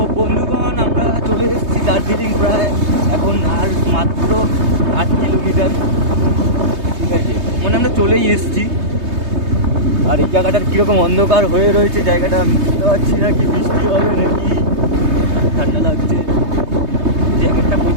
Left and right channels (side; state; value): left; late; 3.2 ms